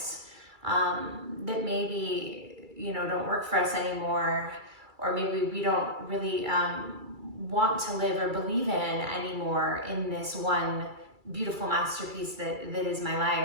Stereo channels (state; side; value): late; left; 2.3 ms